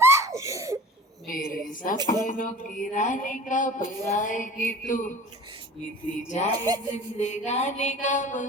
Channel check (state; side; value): normal; both; correlation 0.42